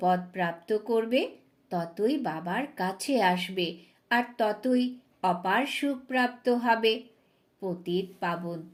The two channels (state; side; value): identical; both; correlation 1.00